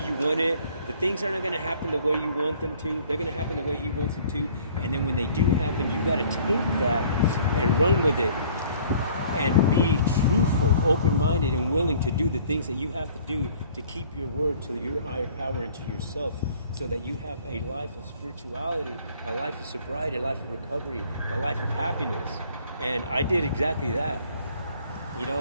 want it. The things are not going to happen the way you want them to. They're going to happen the way He wants it to. And then when they do happen, you got to take that and run with it and be truthful, open-minded, and willing to do the things that you have to do to keep your word to your higher power and to yourself, so that you have a life of spirituality, a life of sobriety, a life of recovery, a life of happiness. And I did exactly that.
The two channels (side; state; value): both; inverted; correlation -0.55